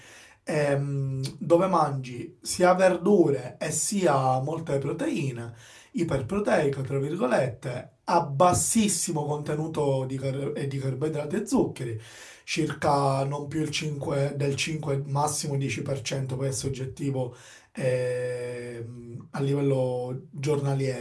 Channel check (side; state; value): both; identical; correlation 1.00